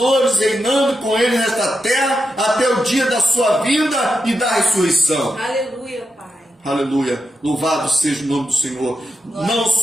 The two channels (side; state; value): both; normal; correlation 0.87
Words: reinando com ele nesta terra até o dia da sua vinda e da ressurreição. Aleluia, Pai. Aleluia, louvado seja o nome do Senhor. Não